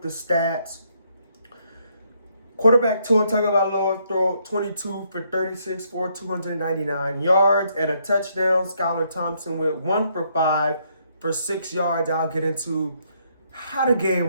the stats. Quarterback Tua Tagovailoa threw 22 for 36 for 299 yards and a touchdown. Skylar Thompson with 1 for 5 for 6 yards. I'll get into how the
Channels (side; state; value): both; inverted; correlation -0.72